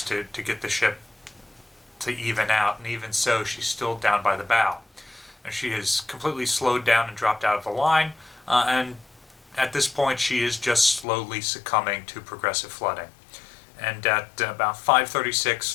to get the ship to even out, and even so, she's still down by the bow. And she has completely slowed down and dropped out of the line, and at this point she is just slowly succumbing to progressive flooding. And at about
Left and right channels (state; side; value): drops out; right; at 11.1 s